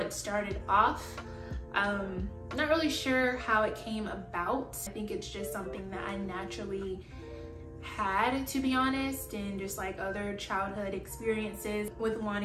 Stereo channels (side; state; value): both; identical; correlation 1.00